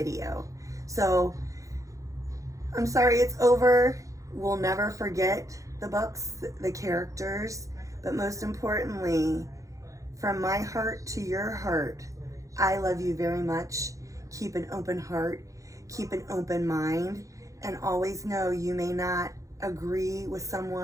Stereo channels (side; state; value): left; late; 0.16 ms